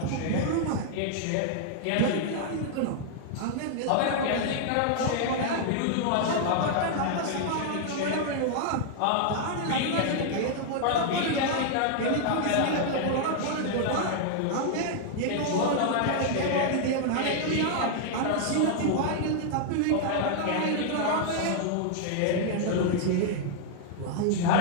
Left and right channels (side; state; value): both; different; correlation -0.01